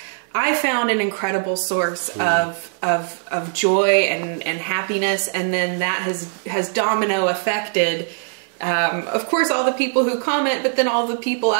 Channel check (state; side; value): silent; left; digital silence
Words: I found an incredible source of joy and happiness, and then that has domino affected, of course, all the people who comment, but then all the people